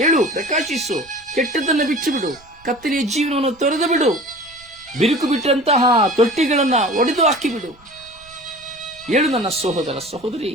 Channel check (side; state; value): right; noise; rumble, 27 dB below the sound